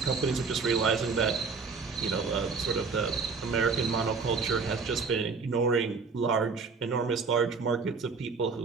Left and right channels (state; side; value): quieter; left; 4.8 dB